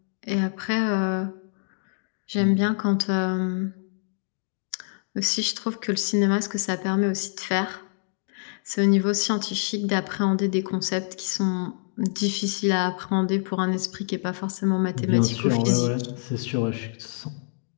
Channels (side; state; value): right; silent; digital silence